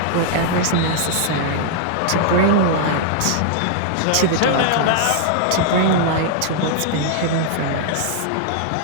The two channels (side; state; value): both; different; correlation -0.01